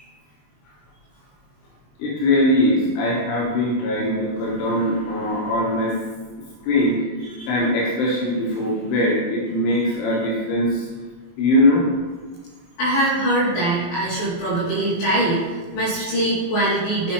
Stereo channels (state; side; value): late; right; 23 ms